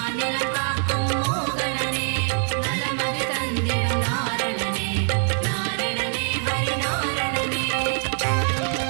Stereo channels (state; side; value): silent; left; digital silence